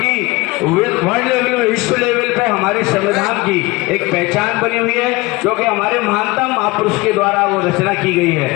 वर्ल्ड लेवल में, विश्व लेवल पे हमारे संविधान की एक पहचान बनी हुई है, क्योंकि हमारे महानतम महापुरुष के द्वारा वो रचना की गई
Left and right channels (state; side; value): quieter; right; 22.8 dB